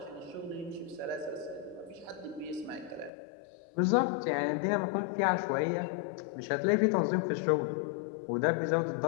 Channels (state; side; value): drops out; right; at 3.1 s